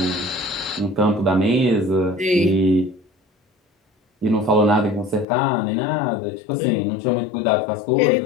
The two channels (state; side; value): drops out; right; at 5.2 s